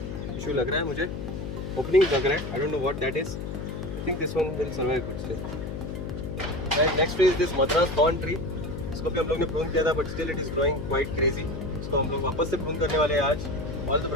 issue लग रहा है मुझे. Opening लग रहा है. I don't know what that is. I think this one will survive good still. And next tree is this Madras thorn tree. इसको भी हम लोग ने prune किया था, but still it is growing quite crazy. इसको हम लोग वापस से prune करने वाले हैं आज. All the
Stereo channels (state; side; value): noise; left; hum, 6 dB below the sound